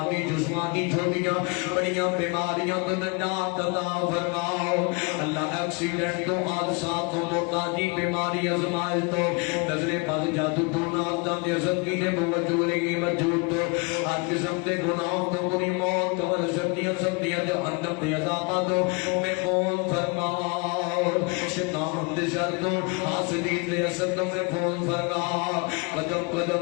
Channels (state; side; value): quieter; right; 31.0 dB